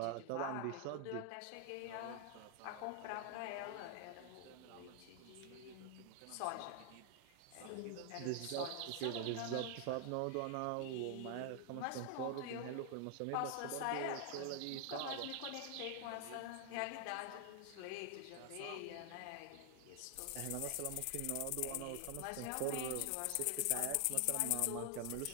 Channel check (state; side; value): different; both; correlation 0.00